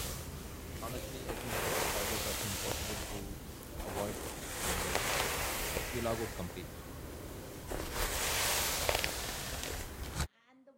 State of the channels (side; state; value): both; identical; correlation 1.00